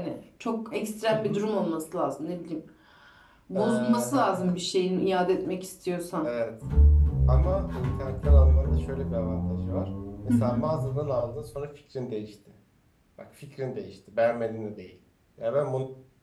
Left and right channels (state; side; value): identical; both; correlation 1.00